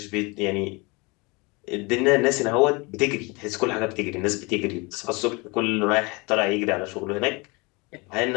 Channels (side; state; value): right; quieter; 27.1 dB